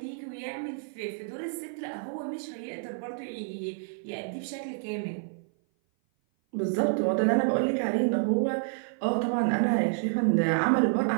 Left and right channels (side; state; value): left; silent; 56 dB below the other